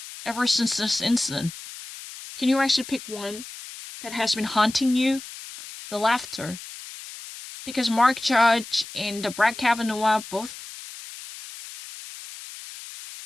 ever since this incident? Can you actually pick one that has been haunting you? The laughter. Because Mark Judge and Brett Kavanaugh, both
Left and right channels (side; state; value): left; noise; hiss, 14 dB below the sound